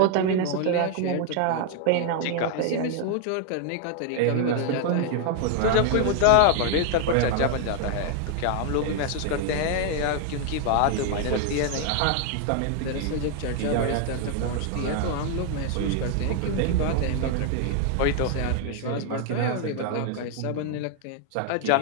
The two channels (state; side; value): different; both; correlation 0.00